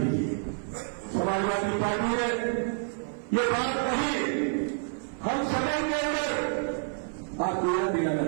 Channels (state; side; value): silent; left; 55 dB below the other